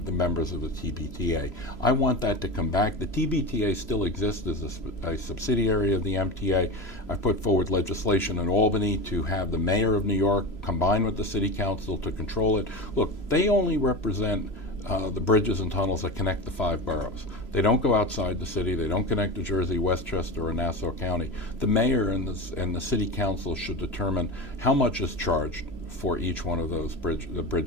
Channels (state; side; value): late; right; 3.0 ms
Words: the members of the TBTA. I want that to come back. The TBTA still exists as a subsidiary of the MTA. I put forward legislation in Albany to have the mayor of New York combine with the city council to control it. Look, they only represent the bridges and tunnels that connect the 5 boroughs. They don't go outside the city. They don't connect to Jersey, Westchester, or Nassau County. The mayor and the city council should determine how much is charged for each one of those